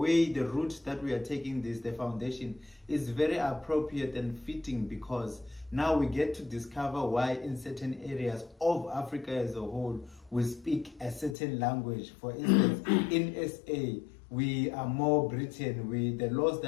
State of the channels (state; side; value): drops out; right; at 11.4 s